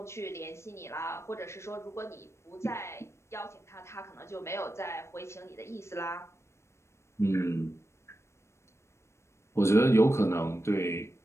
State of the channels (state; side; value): late; right; 0.13 ms